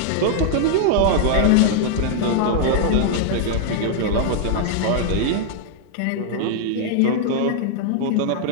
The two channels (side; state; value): both; different; correlation -0.01